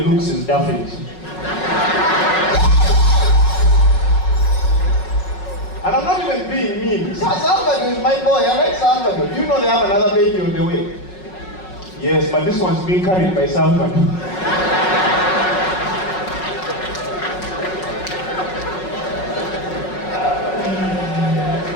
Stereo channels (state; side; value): late; right; 5.4 ms